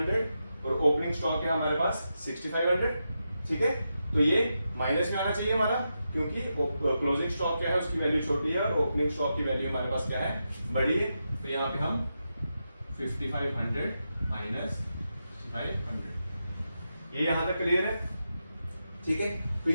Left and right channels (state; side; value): inverted; both; correlation -0.87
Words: और ओपनिंग स्टॉक है हमारे पास 6500। ठीक है, तो ये माइनस में आना चाहिए हमारा, क्योंकि क्लोजिंग स्टॉक क्या है उसकी वैल्यू छोटी है और ओपनिंग स्टॉक की वैल्यू हमारे पास क्या है, बड़ी है। तो यहाँ पे हम 5500 माइनस 6500, ये यहां तक क्लियर है। ठीक है, तो